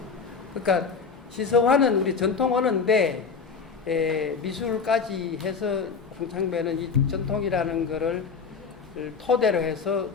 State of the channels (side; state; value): right; quieter; 5.4 dB